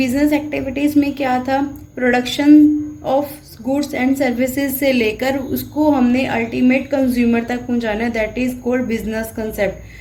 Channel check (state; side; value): identical; both; correlation 1.00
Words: एक्टिविटीज़ में क्या था, production of goods and services से लेकर उसको हमने अल्टीमेट कंज्यूमर तक पहुंचाना, that is called business